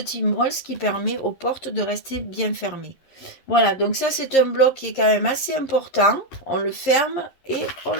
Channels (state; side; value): late; right; 11 ms